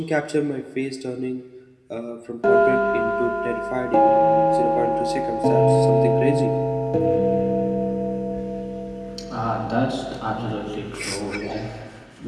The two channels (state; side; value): identical; both; correlation 1.00